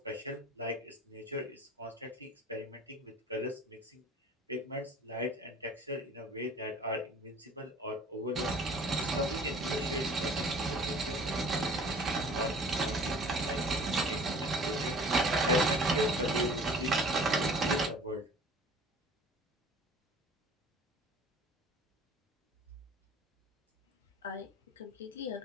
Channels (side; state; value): both; normal; correlation 0.48